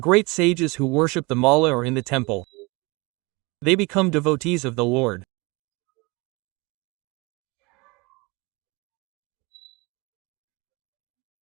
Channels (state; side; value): quieter; left; 25.8 dB